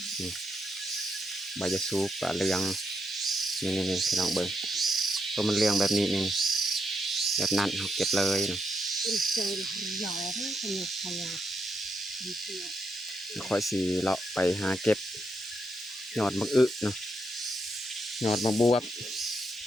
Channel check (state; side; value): normal; both; correlation 0.80